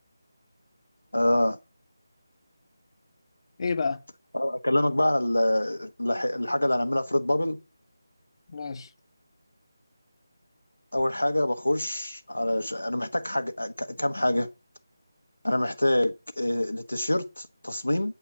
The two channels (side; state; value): both; inverted; correlation -0.99